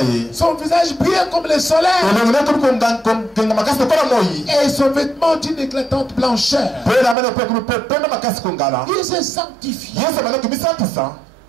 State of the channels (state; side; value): drops out; left; at 7.2 s